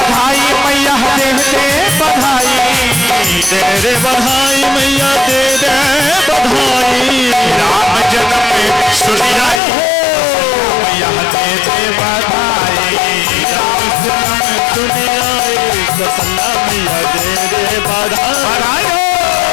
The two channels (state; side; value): drops out; right; at 9.6 s